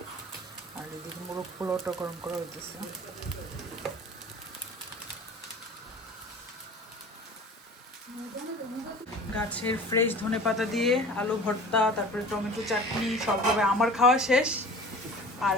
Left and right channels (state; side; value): normal; both; correlation 0.40